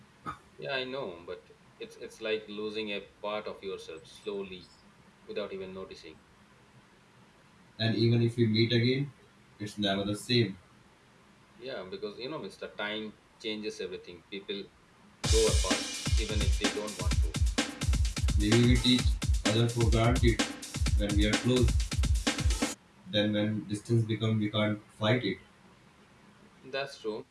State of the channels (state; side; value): identical; both; correlation 1.00